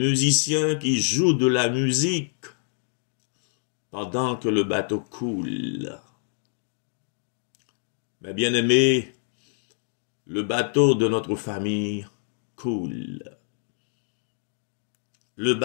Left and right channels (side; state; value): right; silent; 61 dB below the other